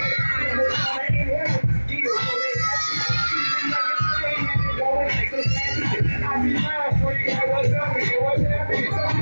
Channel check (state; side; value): inverted; both; correlation -1.00